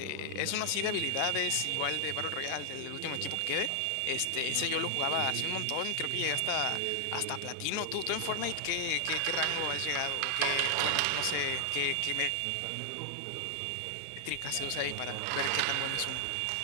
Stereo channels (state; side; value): different; both; correlation 0.00